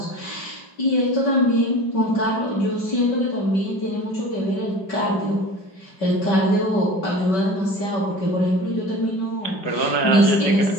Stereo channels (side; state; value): right; late; 5.2 ms